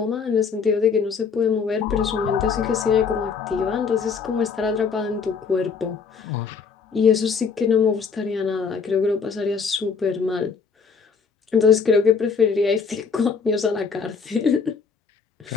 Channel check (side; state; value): right; quieter; 5.6 dB